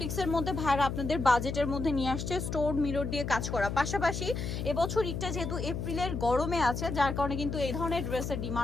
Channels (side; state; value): left; noise; hum, 4 dB below the sound